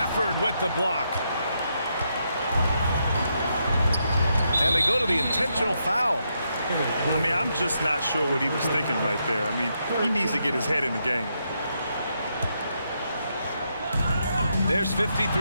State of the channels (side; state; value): both; inverted; correlation -0.80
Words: with the block. And they go to the intentional foul. I mean, I'm just not sure what he was thinking right there. I mean, he needs to get his head in the game. There's